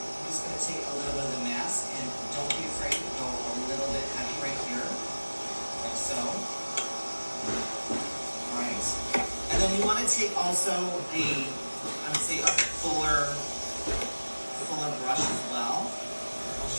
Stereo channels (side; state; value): both; inverted; correlation -1.00